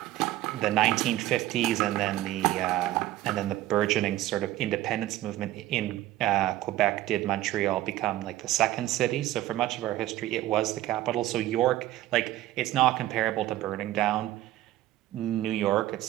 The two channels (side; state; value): left; quieter; 15.0 dB